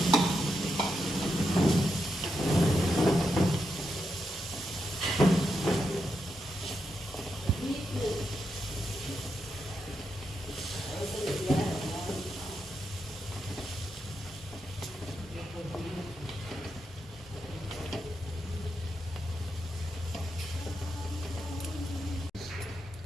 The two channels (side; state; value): both; normal; correlation 0.84